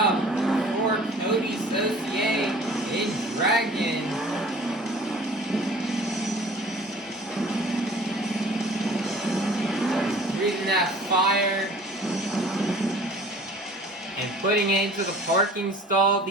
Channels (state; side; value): normal; both; correlation 0.47